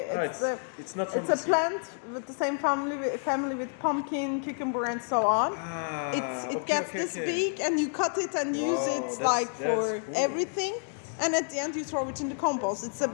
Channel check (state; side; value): silent; right; digital silence